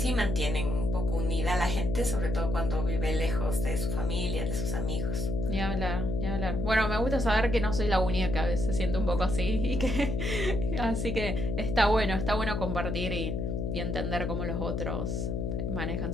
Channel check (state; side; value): noise; left; hum, 1 dB below the sound